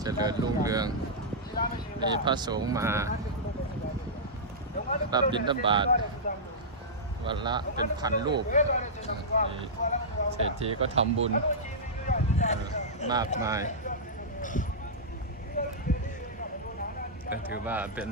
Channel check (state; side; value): normal; both; correlation -0.13